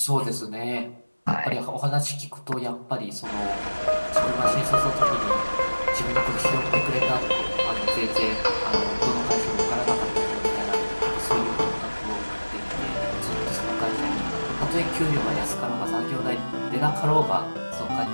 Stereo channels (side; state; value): both; inverted; correlation -1.00